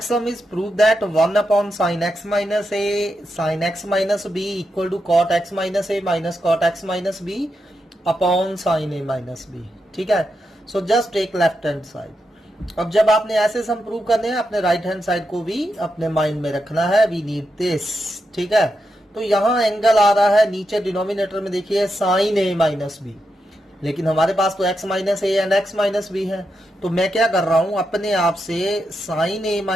sum is prove that 1 upon sin x minus a sin x minus b equal to cot x minus a minus cot x minus b upon sin a minus b. ठीक है. So just take left hand side. अब जब आपने ऐसे सम prove करने हैं अपने right hand side को भी अपने माइंड में रखना है. We need this. ठीक है. तो यहाँ एंगल आ रहा है नीचे डिनोमिनेटर में देखिए sin a माइनस बी, लेकिन हमारे पास तो x minus a and x minus B है. तो मैं क्या कर रहा हूं, अपने आप से साइन a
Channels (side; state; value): both; normal; correlation 0.86